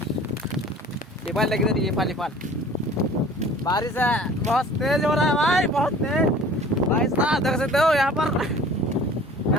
नेपाल लग रही है नेपाल बारिश है बहुत तेज हो रहा है भाई बहुत तेज भाई साहब देख सकते हो यहाँ पर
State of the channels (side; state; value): both; normal; correlation 0.47